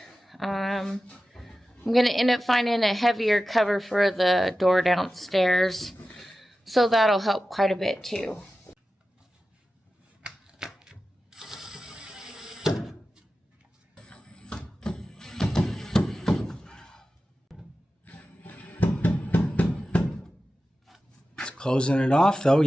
I'm going to end up finding a heavier cover for the door downstairs, so that'll help quite a bit too. Closing it off though,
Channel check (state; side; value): normal; both; correlation 0.94